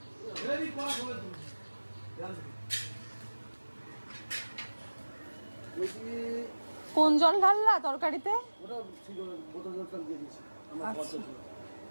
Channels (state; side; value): inverted; both; correlation -1.00